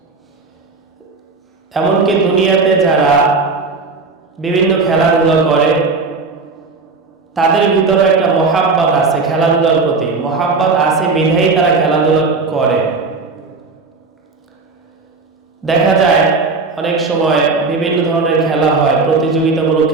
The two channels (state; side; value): quieter; left; 4.1 dB